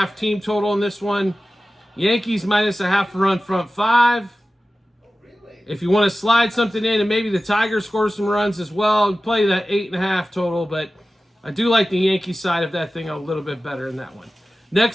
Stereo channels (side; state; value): both; normal; correlation 0.95